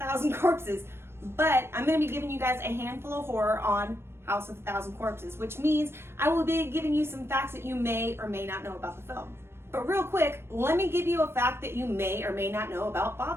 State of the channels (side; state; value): left; late; 0.12 ms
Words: Corpses, but I'm going to be giving you guys a handful of horror on House of a Thousand Corpses, which means I will be giving you some facts that you may or may not know about the film. But real quick, let me give you a fact that you may or may not know about